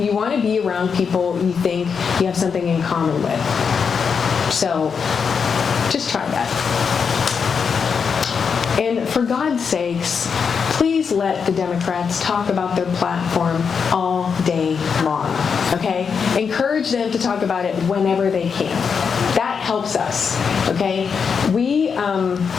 want to be around people you think you have something in common with. So just try that. And for God's sakes, please let the Democrats talk about their platform all day long, okay? Encourage them to talk about it whenever they can. That helps us, okay? We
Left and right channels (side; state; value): right; quieter; 6.1 dB